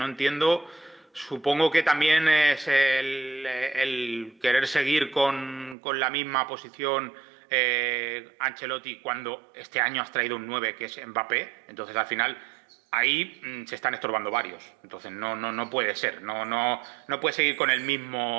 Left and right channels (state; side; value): drops out; left; at 5.8 s